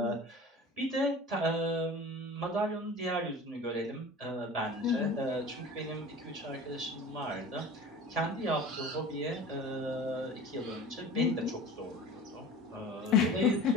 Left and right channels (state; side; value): normal; both; correlation 0.38